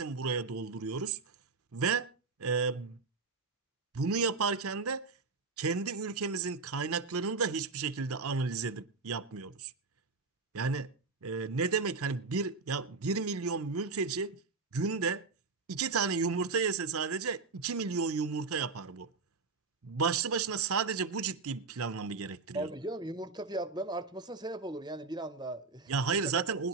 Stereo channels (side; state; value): left; quieter; 4.4 dB